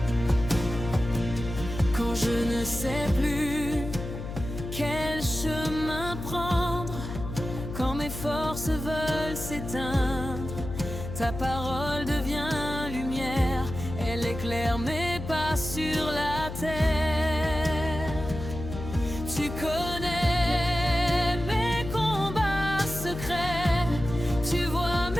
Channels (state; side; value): noise; left; hum, 8 dB below the sound